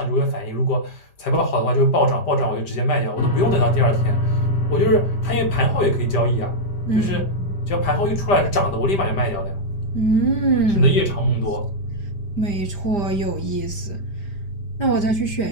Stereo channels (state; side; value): late; right; 5.0 ms